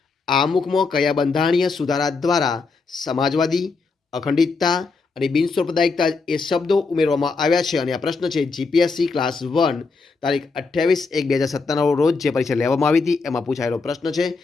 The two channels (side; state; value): right; quieter; 4.3 dB